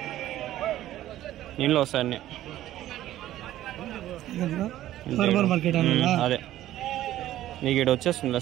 ఇంట్లో వస్తాయి అన్నీ. అదే నీకు ఇక్కడ వచ్చేస్తుంది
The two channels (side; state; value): left; quieter; 13.7 dB